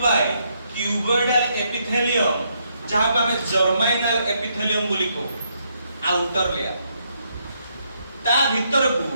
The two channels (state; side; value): inverted; both; correlation -0.75